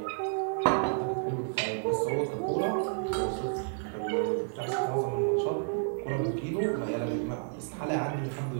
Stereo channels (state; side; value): silent; left; digital silence